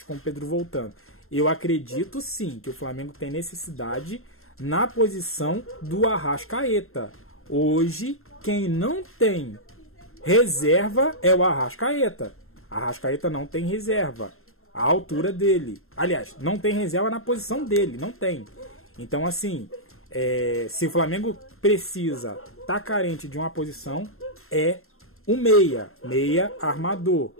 com o Pedro voltando. Eu acredito sim que o Flamengo tem necessidade na posição do Arrascaeta. Hoje, quem não tem reserva é o Arrascaeta. Arrascaeta não tem reserva. A altura dele. Aliás, não tem reserva na posição dele. Não tem. Então, assim, se o Flamengo precisa, tá carente de uma posição, é um meia. Meia armador.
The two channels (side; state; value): right; late; 0.62 ms